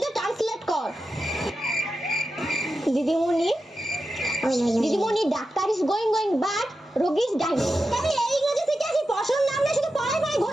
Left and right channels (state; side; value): normal; both; correlation 0.90